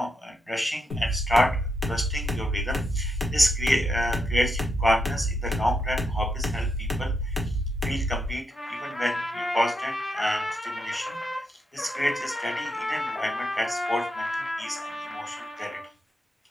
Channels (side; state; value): both; normal; correlation 0.83